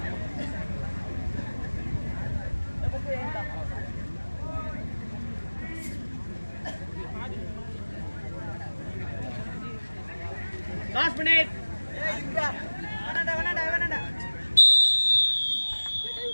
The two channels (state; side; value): inverted; both; correlation -1.00